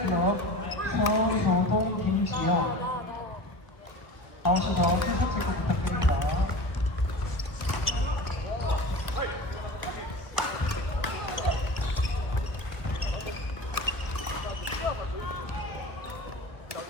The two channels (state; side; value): late; right; 1.1 ms